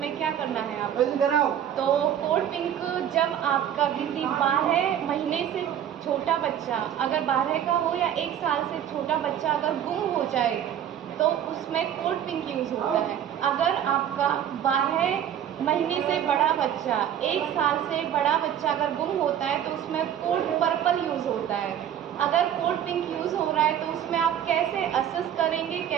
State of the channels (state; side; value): quieter; left; 10.0 dB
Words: क्या करना है आपको। तो कोल्ड पिंक जब आपका किसी 12 महीने से छोटा बच्चा, अगर 12 का हो या 1 साल से छोटा बच्चा अगर गुम हो जाए तो उसमें कोल्ड पिंक यूज़ होता है। अगर आपका 12 महीने से बड़ा बच्चा, 1 साल से बड़ा बच्चा अगर गुम होता है तो उसमें कोल्ड पर्पल यूज़ होता है। अगर कोल्ड पिंक यूज़ हो रहा है तो उसमें आप कैसे असेस करेंगे,